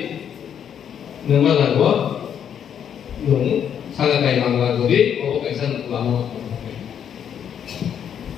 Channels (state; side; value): quieter; right; 8.7 dB